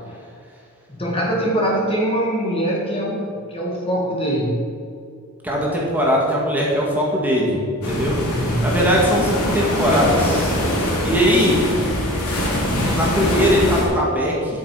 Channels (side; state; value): both; normal; correlation 0.38